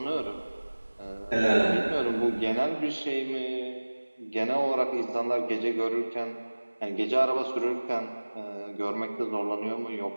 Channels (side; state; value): both; inverted; correlation -1.00